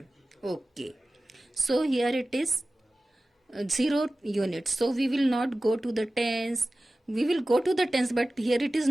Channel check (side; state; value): both; normal; correlation 0.96